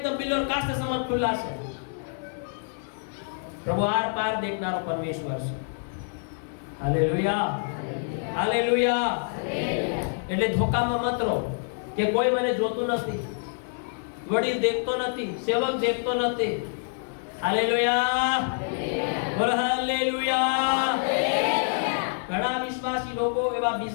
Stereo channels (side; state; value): right; silent; 60 dB below the other